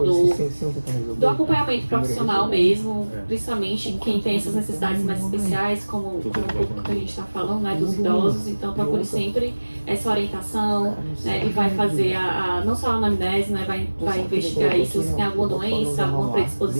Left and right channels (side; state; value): both; inverted; correlation -1.00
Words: acompanhamento profissional mesmo, principalmente quem tem essas necessidades mais especiais, como o público que a gente está falando, né, dos idosos, então procure sempre essa orientação, né, ele vai fazer não só a anamnese, né, vai investigar aí se você tem alguma doença, alguma